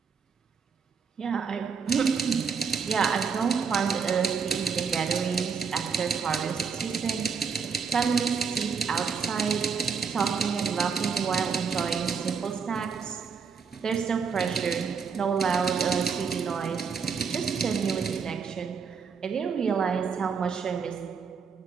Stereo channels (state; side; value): quieter; left; 5.9 dB